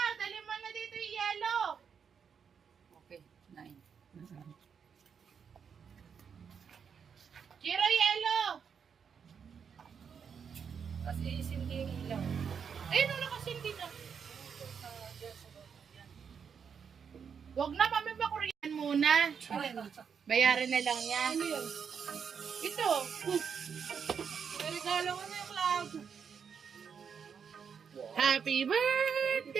Dali mo na dito yung yellow. Okay, 9. Jiro, yellow. Kasi isindi yung ilaw. Ayun, wala kasi hindi na. Huwag na, mami, bakuriyan muna. Bayaran na lang yan. Ito. Regalo ko na yung cloud. Happy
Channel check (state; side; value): quieter; left; 6.8 dB